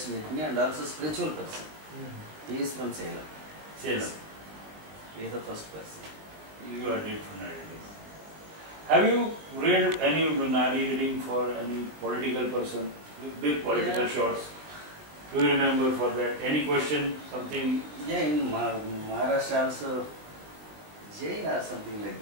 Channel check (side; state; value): left; late; 19 ms